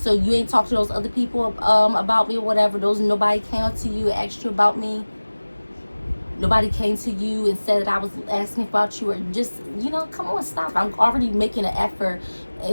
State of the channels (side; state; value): both; inverted; correlation -1.00